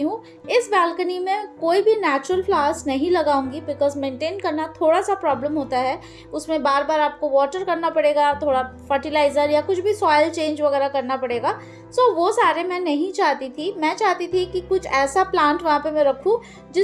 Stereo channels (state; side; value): identical; both; correlation 1.00